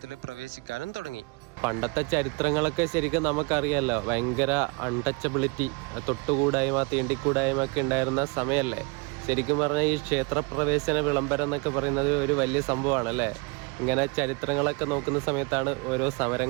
പ്രവേശിക്കാനും തുടങ്ങി. പണ്ടത്തെ ചരിത്രങ്ങളൊക്കെ ശരിക്കും നമുക്കറിയാമല്ലോ, ഭയങ്കര അൺടച്ചബിലിറ്റി, തൊട്ടുകൂടായ്മ തീണ്ടിക്കൂടായ്മ ഒക്കെ ഉണ്ടായിരുന്ന സമയമല്ലേ. ശരിക്കും പറഞ്ഞാൽ ഈ ക്ഷേത്ര പ്രവേശന വിളംബരം എന്നൊക്കെ പറയുന്നത് ഒരു വലിയ സംഭവമാണ് അല്ലേ. ഇങ്ങനെ ചരിത്രങ്ങളൊക്കെ നോക്കുന്ന സമയത്താണ് ഓരോ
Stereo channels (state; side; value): quieter; left; 29.5 dB